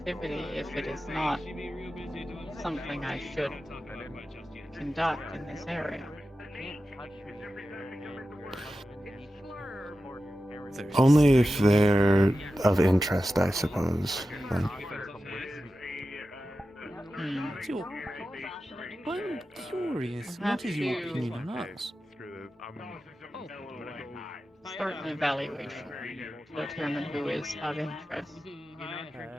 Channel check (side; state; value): both; normal; correlation 0.93